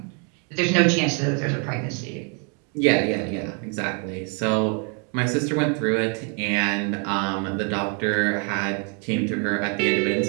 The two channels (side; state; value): left; quieter; 37.6 dB